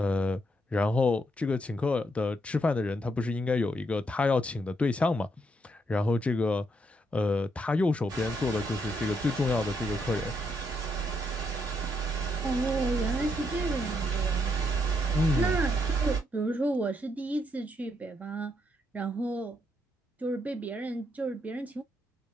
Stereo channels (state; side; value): normal; both; correlation 0.76